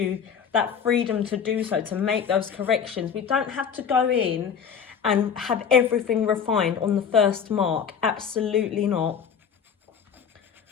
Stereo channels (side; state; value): right; quieter; 7.2 dB